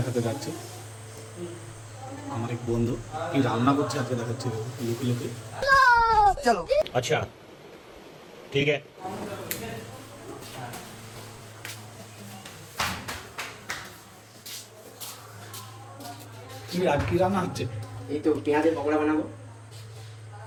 যাচ্ছি। আমার এক বন্ধু কি রান্না করছে আজকে দেখাচ্ছি, লুকি লুকি। चलो अच्छा ठीक है। কি আজ কি রান্না হচ্ছে? এই তো পেঁয়াজের পকোড়া বানাবো।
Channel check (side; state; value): both; identical; correlation 1.00